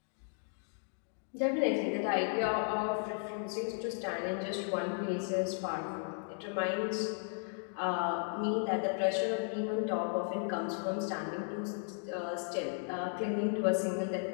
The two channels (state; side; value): silent; right; 54 dB below the other